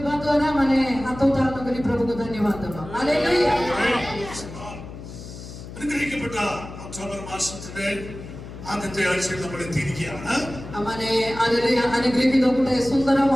ଦ୍ୱାରା ମାନେ ହାତ ଉତ୍ତାରଣ କରି ପ୍ରଭୁଙ୍କୁ ଧନ୍ୟବାଦ ଦେବା. ହାଲେଲୁୟା. അനുഗ്രഹിക്കപ്പെട്ട ഒക്ടോബർ മാസത്തിന്റെ ആദ്യത്തെ ആഴ്ചയിൽ നമ്മൾ എത്തിയിരിക്കുകയാണ്. ମାନେ ହାଲେଲୁୟା ଅନୁଗ୍ରହିତ ଗୋଟେ ସୁନ୍ଦର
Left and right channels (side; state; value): left; noise; hum, 13 dB below the sound